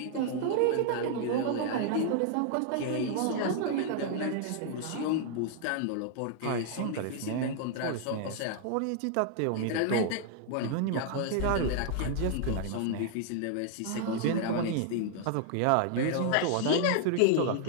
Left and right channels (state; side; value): different; both; correlation 0.00